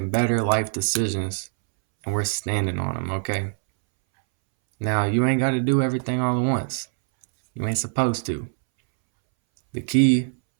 better life decisions and we're standing on them, okay? Now, you ain't got to do everything all at once. You ain't supposed to. The key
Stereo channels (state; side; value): silent; left; 63 dB below the other